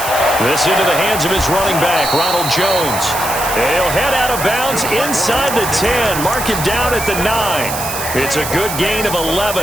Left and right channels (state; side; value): noise; right; hiss, 6 dB below the sound